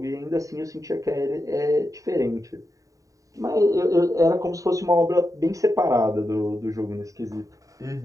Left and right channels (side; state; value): left; late; 0.16 ms